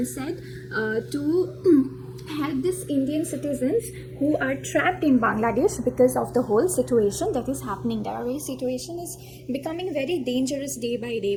said to help these Indian citizens who are trapped in Bangladesh because of the whole situation that is happening there. Our situation is becoming very dangerous day by day.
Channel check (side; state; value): both; identical; correlation 1.00